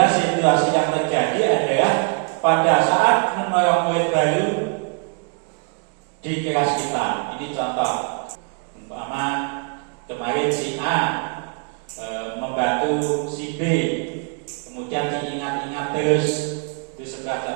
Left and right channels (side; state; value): left; quieter; 38.9 dB